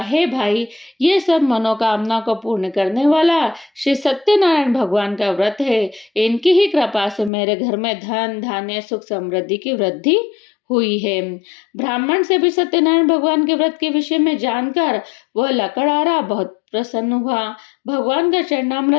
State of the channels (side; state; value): right; drops out; at 7.3 s